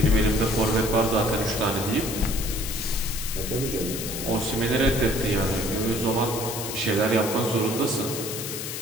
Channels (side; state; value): left; noise; hiss, 6 dB below the sound